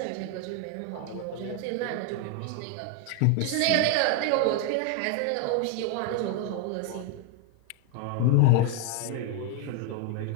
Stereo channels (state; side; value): different; both; correlation 0.00